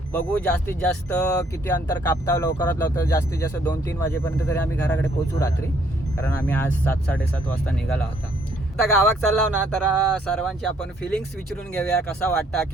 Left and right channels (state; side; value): normal; both; correlation 0.66